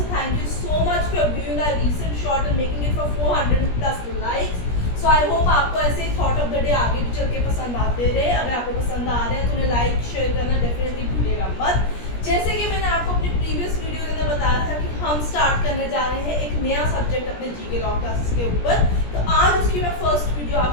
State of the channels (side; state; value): right; late; 17 ms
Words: thank you so much for viewing our recent short and making it for 400 plus likes. So I hope आपको ऐसे ही थॉट ऑफ द डे आगे भी चल के पसंद आते रहे. अगर आपको पसंद आ रहे हैं तो उन्हें लाइक शेयर करना डेफिनेटली भूलिएगा मत. जैसे कि मैंने आपको अपनी प्रीवियस वीडियो के अंदर बताया था कि हम स्टार्ट करने जा रहे हैं एक नया सब्जेक्ट अपने जीके लॉ क्लासेस के ऊपर. तो आज उसकी मैं फर्स्ट वीडियो